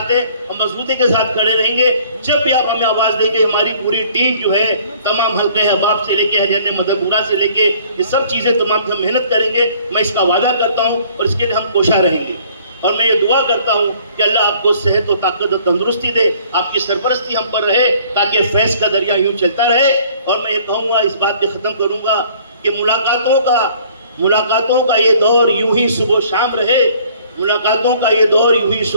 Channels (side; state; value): both; inverted; correlation -0.56